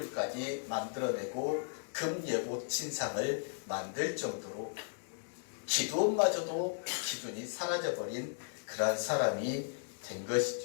만들어내고 금예봇 신상을 만들 정도로 기드온마저도 기준이 사라져버린 그러한 사람이 된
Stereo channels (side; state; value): right; silent; digital silence